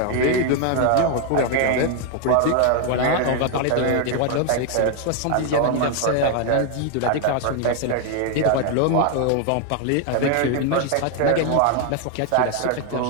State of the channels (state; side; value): different; both; correlation 0.00